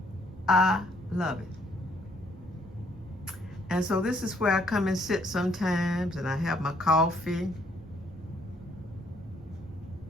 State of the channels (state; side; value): noise; right; rumble, 20 dB below the sound